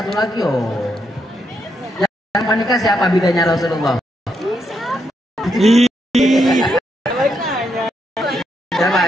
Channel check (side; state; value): both; normal; correlation 0.79